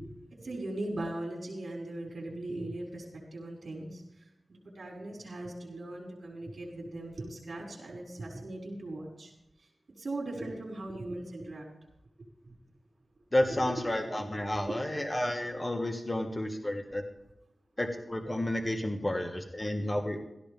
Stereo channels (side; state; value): both; normal; correlation 0.96